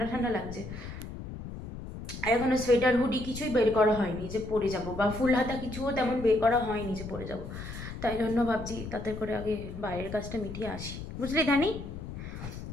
ঠান্ডা লাগছে। আর এখনও সোয়েটার হুডি কিছুই বের করা হয়নি যে পরে যাব, বা ফুল হাতা কিছুও তেমন বের করা হয়নি যে পরে যাব, তাই জন্য ভাবছি তাতে করে আগে বাইরের কাজটা মিটিয়ে আসি, বুঝলি ধানি।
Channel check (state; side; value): noise; left; rumble, 9 dB below the sound